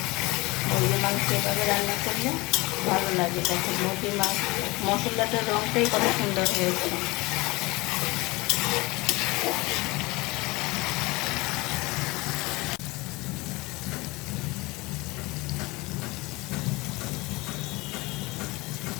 মুরগির মাংস এভাবে রান্না করলে ভালো লাগে। তারপর মুরগির মাংস মশলাটার রঙটাই কত সুন্দর হয়েছে।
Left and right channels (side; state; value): right; quieter; 23.3 dB